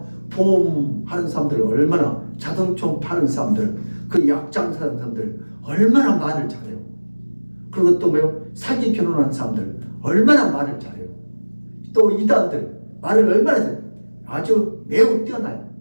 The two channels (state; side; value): inverted; both; correlation -1.00